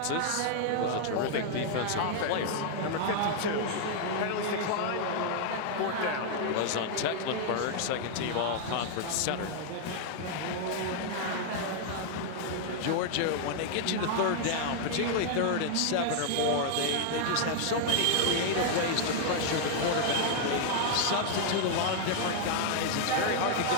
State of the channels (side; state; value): both; different; correlation 0.00